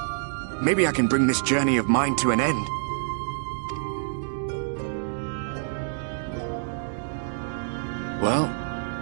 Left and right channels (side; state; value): left; silent; digital silence